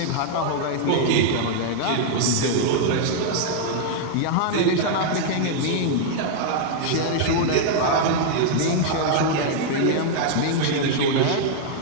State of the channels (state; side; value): different; both; correlation -0.01